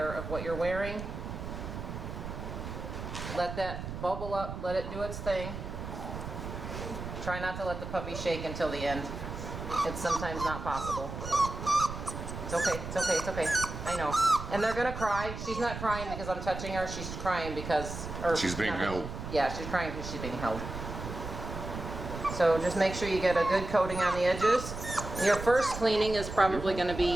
of what you're wearing. Let that bubble up, let it do its thing. Try not to let the puppy shake until the end. It's sometimes not possible. It's okay, it's okay, it's okay. I know. And they're gonna cry. She's not crying because I'm touching her. She's crying because... she's being held. Yeah, she's crying because she's being held. So just make sure you get a good coating on the edges. Your first cleaning is probably gonna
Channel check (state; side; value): noise; right; rumble, 8 dB below the sound